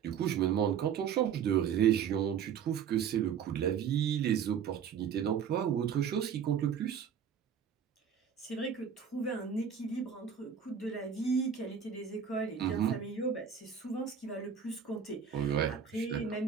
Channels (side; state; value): left; quieter; 7.7 dB